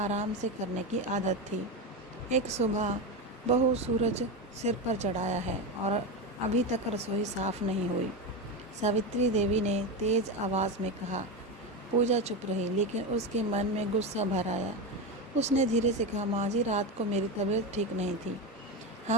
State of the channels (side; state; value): both; normal; correlation 0.16